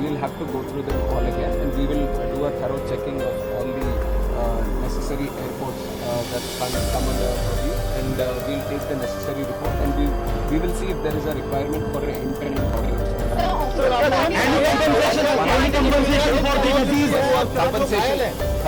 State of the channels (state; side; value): identical; both; correlation 1.00